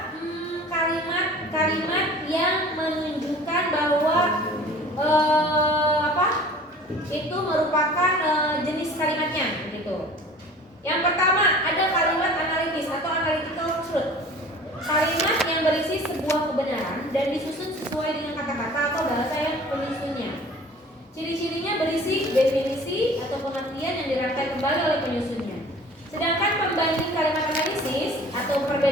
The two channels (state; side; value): normal; both; correlation 0.45